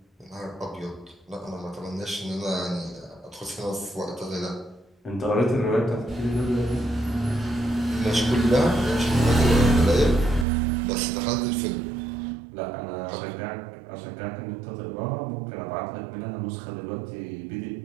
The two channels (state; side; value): drops out; left; at 10.5 s